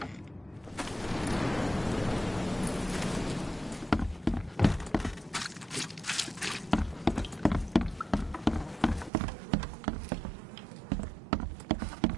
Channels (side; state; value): left; drops out; at 9.1 s